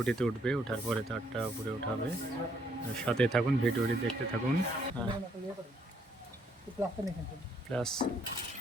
উঠবে, ওঠার পরে তারটা উপরে উঠাবে। সাথে থাকুন, ভিডিওটি দেখতে থাকুন। প্লাস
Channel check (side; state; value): both; normal; correlation 0.69